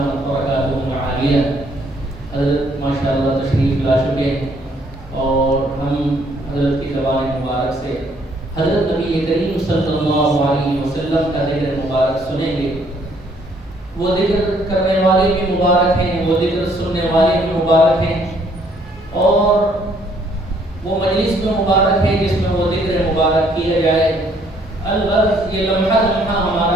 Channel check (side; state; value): both; normal; correlation 0.65